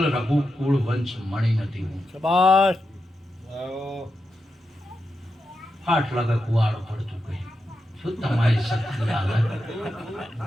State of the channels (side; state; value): both; normal; correlation 0.87